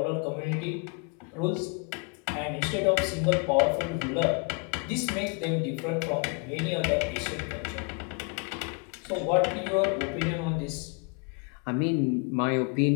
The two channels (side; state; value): right; quieter; 34.3 dB